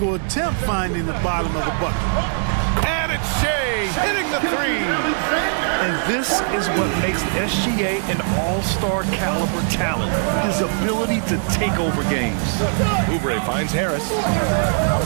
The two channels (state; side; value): silent; left; digital silence